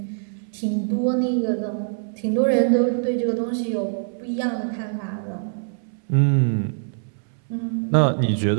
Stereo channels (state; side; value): silent; left; 62 dB below the other